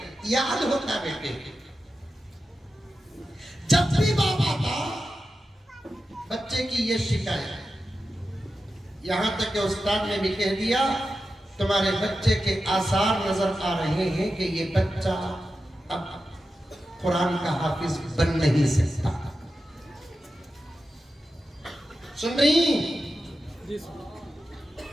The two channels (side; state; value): both; normal; correlation 0.91